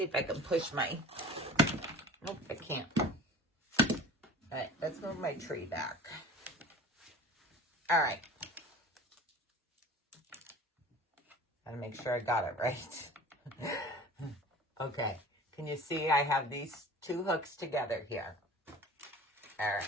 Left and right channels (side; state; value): both; normal; correlation 0.41